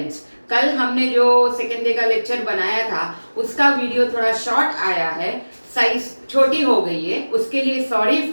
कल हमने जो सेकेंड डे का लेक्चर बनाया था उसका वीडियो थोड़ा शॉर्ट आया है, साइज छोटी हो गई है, उसके लिए सॉरी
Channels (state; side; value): inverted; both; correlation -1.00